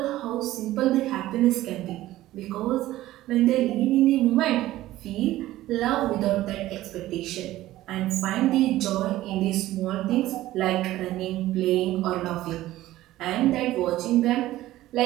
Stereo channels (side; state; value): left; quieter; 15.5 dB